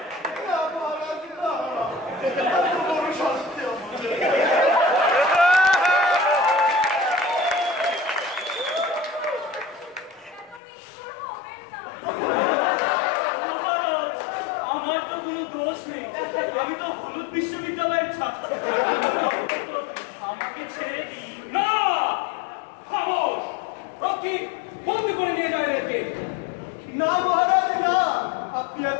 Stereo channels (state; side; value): drops out; right; at 10.6 s